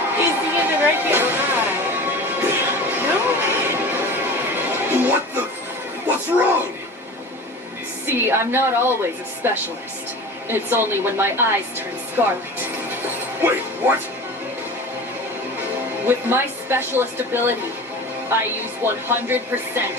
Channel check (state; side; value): normal; both; correlation 0.35